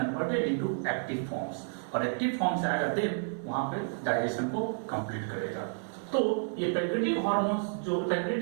into active forms, और एक्टिव फॉर्म से आएगा, देन वहां पे डाइजेशन को कंप्लीट करेगा। तो ये पैंक्रियाटिक हार्मोन्स, जो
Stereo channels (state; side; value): silent; left; digital silence